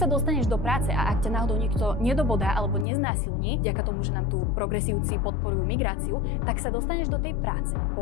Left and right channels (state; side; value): drops out; right; at 2.9 s